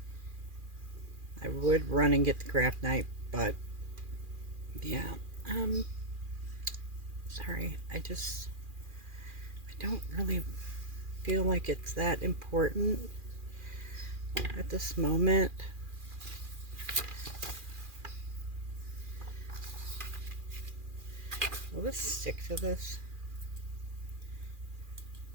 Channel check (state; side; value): late; left; 2.4 ms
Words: I would run and get the craft knife, but yeah, sorry, I don't really feel like it's that important at this moment. Will this stick to this